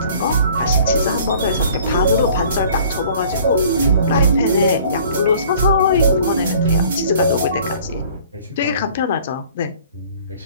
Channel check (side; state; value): both; inverted; correlation -0.52